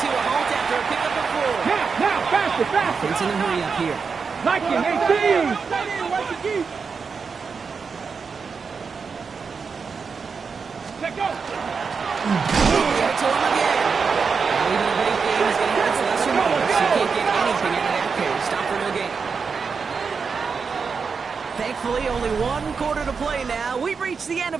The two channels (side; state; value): left; quieter; 5.4 dB